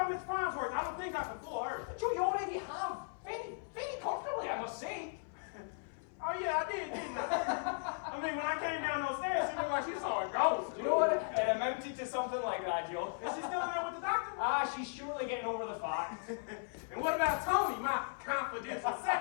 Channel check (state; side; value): silent; right; 53 dB below the other